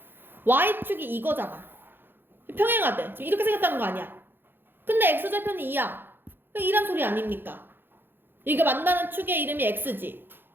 y축이 이거잖아. 평행하대. 지금 이렇게 생겼다는 거 아니야. 근데 x절편이 2야. 2란 소리 아닙니까? 이게 만나는 축의 이름이 x지.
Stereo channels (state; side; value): late; left; 0.10 ms